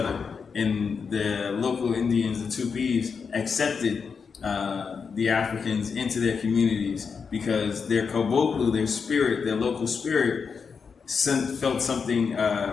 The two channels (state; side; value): quieter; right; 5.7 dB